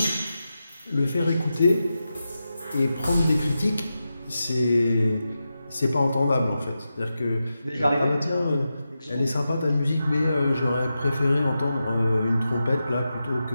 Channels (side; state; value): both; inverted; correlation -0.90